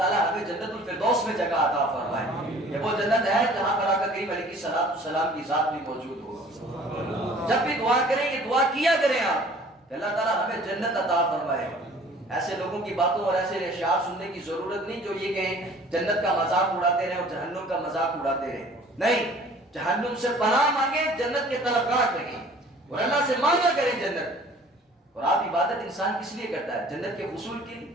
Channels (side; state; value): both; normal; correlation 0.50